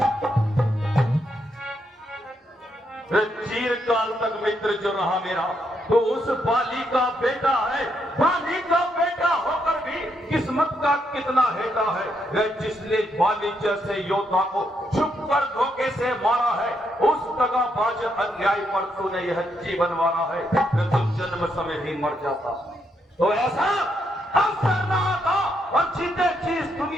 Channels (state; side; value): normal; both; correlation 0.78